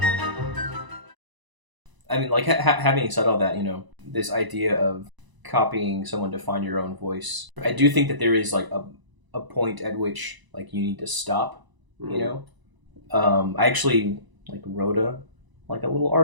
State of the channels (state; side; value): late; left; 1.0 ms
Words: I mean, like, having said all that, this idea of copying someone to find your own voice, I do think that there is, like, a point at which, like, you need to stop, I actually, like, wrote a little